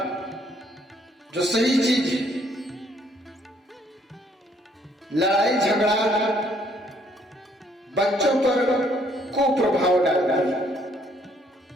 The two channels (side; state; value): both; normal; correlation 0.66